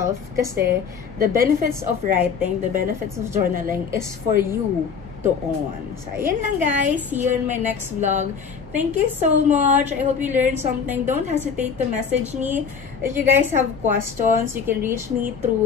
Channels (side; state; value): right; quieter; 6.3 dB